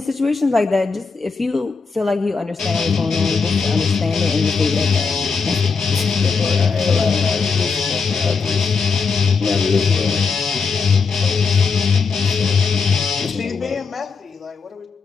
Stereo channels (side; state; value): right; quieter; 5.0 dB